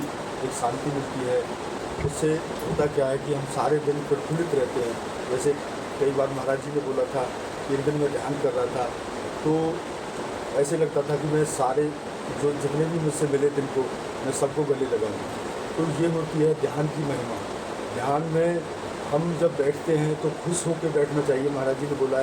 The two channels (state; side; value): identical; both; correlation 1.00